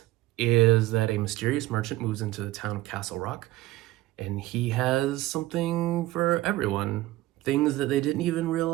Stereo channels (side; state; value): left; quieter; 17.1 dB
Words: is that a mysterious merchant moves into the town of Castle Rock, and he has something for everyone. Things that they didn't even